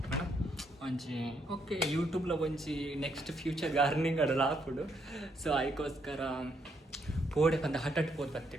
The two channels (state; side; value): normal; both; correlation 0.75